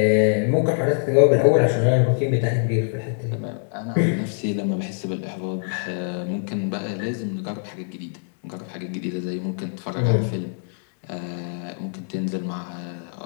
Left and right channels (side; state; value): right; silent; digital silence